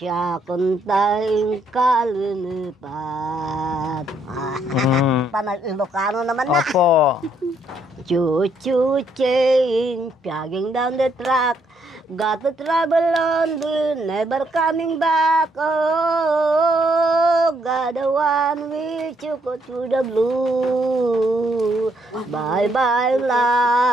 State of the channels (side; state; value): both; normal; correlation 0.72